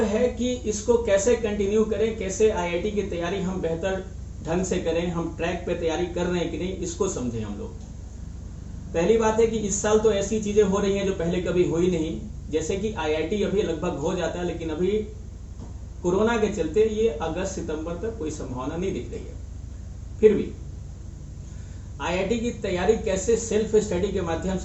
है कि इसको कैसे कंटिन्यू करें, कैसे आईआईटी की तैयारी हम बेहतर ढंग से करें, हम ट्रैक पे तैयारी कर रहे हैं कि नहीं, इसको समझें हम लोग। पहली बात है कि इस साल तो ऐसी चीजें हो रही हैं जो पहले कभी हुई नहीं, जैसे कि आईआईटी अभी लगभग हो जाता है, लेकिन अभी कोरोना के चलते ये अगस्त सितंबर तक कोई संभावना नहीं दिख रही है। फिर भी आईआईटी की तैयारी कैसे सेल्फ स्टडी के माध्यम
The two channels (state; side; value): identical; both; correlation 1.00